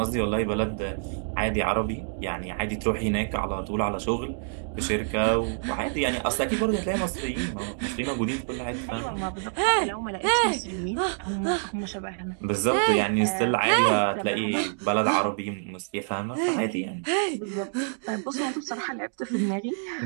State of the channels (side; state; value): left; silent; digital silence